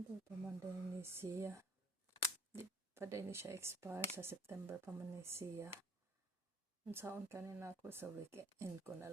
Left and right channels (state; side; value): normal; both; correlation 0.53